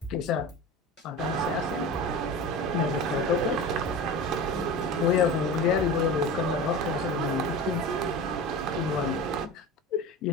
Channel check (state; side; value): normal; both; correlation 0.31